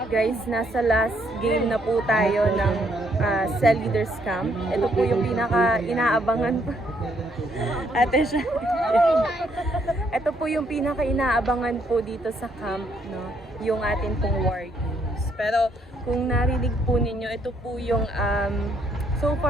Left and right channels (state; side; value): normal; both; correlation 0.71